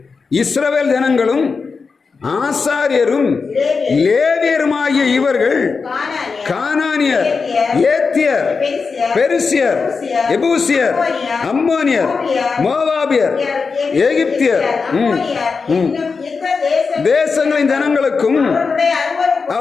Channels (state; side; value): quieter; right; 4.9 dB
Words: இஸ்ரவேல் ஜனங்களும் ஆசாரியரும் லேவியருமாகிய இவர்கள் கானானியர், ஏத்தியர், பெரிசியர், எபூசியர், அம்மோனியர், மோவாபியர், எகிப்தியர் தேசங்களின் ஜனங்களுக்கும்